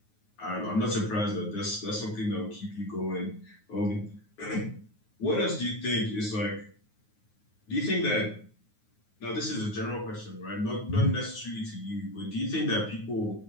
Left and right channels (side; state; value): right; late; 9.5 ms